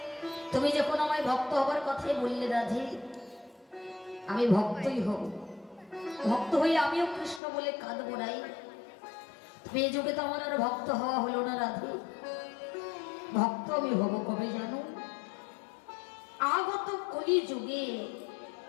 তুমি যখন আমায় ভক্ত হবার কথাই বললে রাধে, আমি ভক্তই হব। ভক্ত হয়ে আমিও কৃষ্ণ বলে কাঁদবো নাই। এই যুগে তো আমার আর ভক্ত হওয়া হলো না রাধে। ভক্ত আমি হব কবে জানো? আগত কলি যুগে।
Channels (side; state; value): right; drops out; at 7.4 s